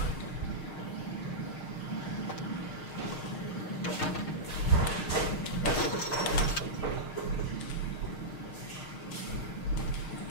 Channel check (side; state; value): right; late; 6.5 ms